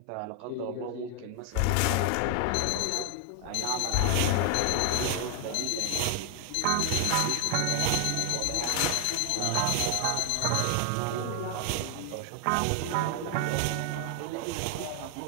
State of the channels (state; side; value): different; both; correlation 0.00